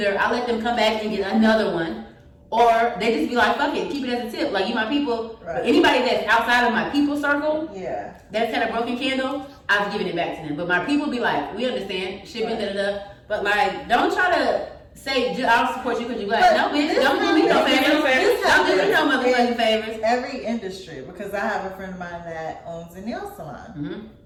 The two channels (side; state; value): both; identical; correlation 1.00